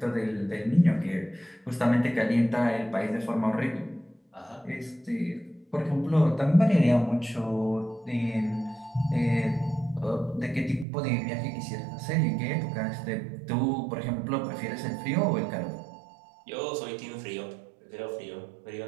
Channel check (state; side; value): drops out; left; at 10.9 s